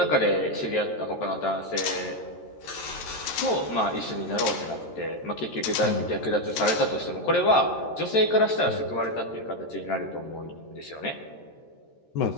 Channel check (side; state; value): right; late; 13 ms